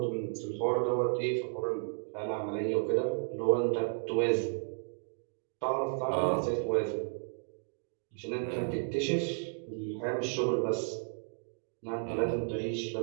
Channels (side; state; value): left; silent; digital silence